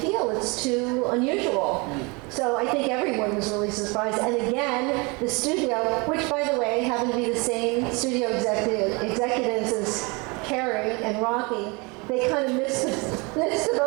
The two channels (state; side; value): quieter; left; 28.4 dB